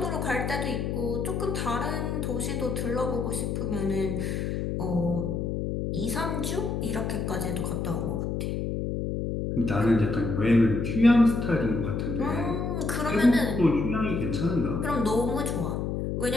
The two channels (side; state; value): left; noise; hum, 1 dB below the sound